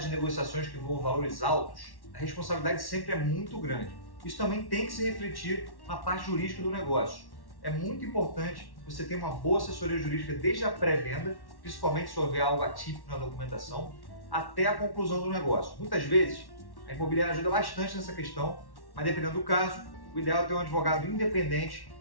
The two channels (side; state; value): right; late; 1.1 ms